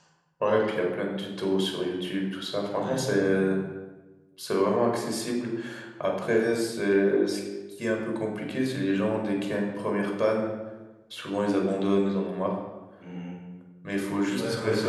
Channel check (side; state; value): both; identical; correlation 1.00